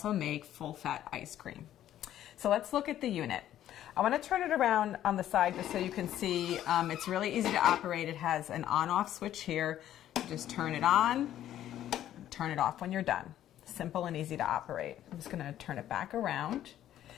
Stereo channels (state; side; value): quieter; right; 12.0 dB